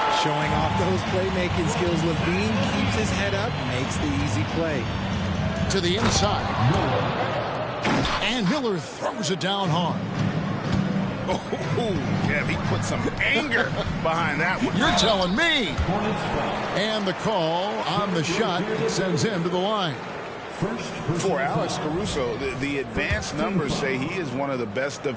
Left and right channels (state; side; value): identical; both; correlation 1.00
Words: Showing off those playmaking skills, Levine keeps his head up, makes the easy play. To the inside. And Miller throws it down hard. Oh, yeah, he put some anger behind that one. You're telling me. And the call on the shot sends him to the line. For Alex Caruso, the advanced numbers say he is one of the best